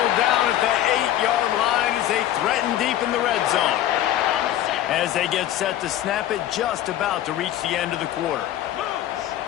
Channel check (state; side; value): quieter; right; 12.6 dB